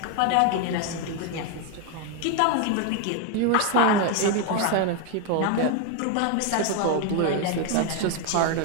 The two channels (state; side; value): different; both; correlation 0.01